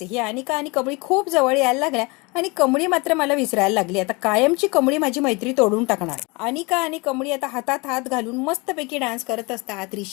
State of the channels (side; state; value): right; quieter; 27.1 dB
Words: आहे. ही अनिका आणि कमळी खूप जवळ यायला लागल्या आणि कमळी मात्र मला विसरायला लागली. आता कायमची कमळी माझी मैत्री तोडून टाकणार. अनिका आणि कमळी आता हातात हात घालून मस्तपैकी डान्स करत असतात.